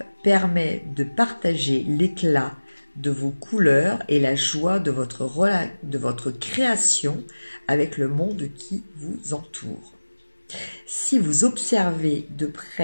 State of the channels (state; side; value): inverted; both; correlation -1.00